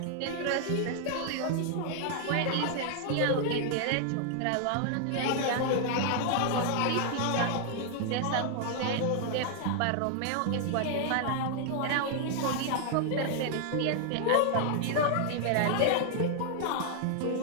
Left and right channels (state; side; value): different; both; correlation 0.00